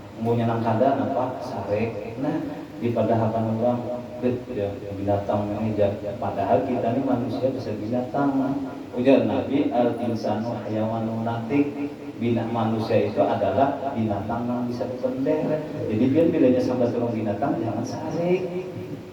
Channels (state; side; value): identical; both; correlation 1.00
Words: Mau nyenang kada apa sare. Nah, di padahakan orang ya, binatang ini padahal kita ini manusia bisa binatang. Ujar Nabi al-insanu hayawanun natik. Bina manusia itu adalah binatang yang bisa dipendek. Jadi biar bilanya sampai turun binatang jangan sarik.